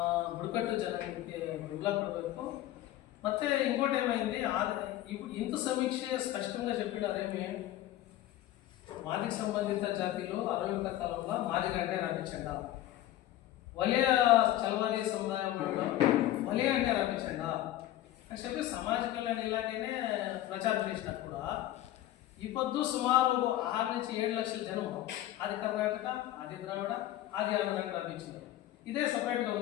ಬುಡಕಟ್ಟು ಜನಾಂಗಕ್ಕೆ ಬೆಂಬಲ ಕೊಡಬೇಕು. ಮತ್ತು ఇంకోటి ఏమైంది, ఇంత సమీక్ష స్పష్టంగా చెప్పినారేమి, మాదిగ సంబంధిత జాతీయులు 60 కాలంలో మాదిగ అంటే రాపించండి, వలయ చలవాది సముదాయం వలయ అంటే రాపించండి అని చెప్పి సమాజ కళ్యాణ ఇలాగనే ప్రచారం చేసినా కూడా ఈ పొద్దు సుమారు 6 నుంచి 7 లక్షల జనం ఆది కర్ణాటక, ఆది ద్రావిడ, ఆది ఆంధ్రాకి రాపించారు. ఇదే సపరేట్గా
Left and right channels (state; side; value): quieter; right; 14.1 dB